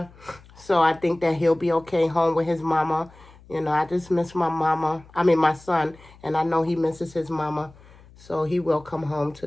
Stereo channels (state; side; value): noise; left; hum, 24 dB below the sound